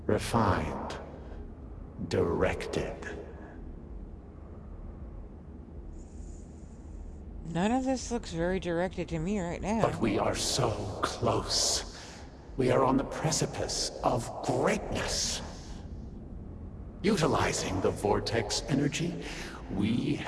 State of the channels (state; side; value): identical; both; correlation 1.00